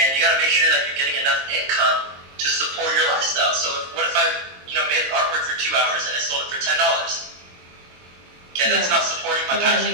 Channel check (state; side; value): late; left; 22 ms